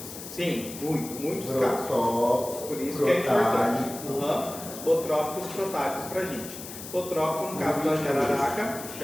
Sim, muitos casos. Protópicos, Por isso que é importante. Os botrópicos e protálicos para a gente. Botrópico no caso da jararaca,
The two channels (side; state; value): left; noise; hiss, 12 dB below the sound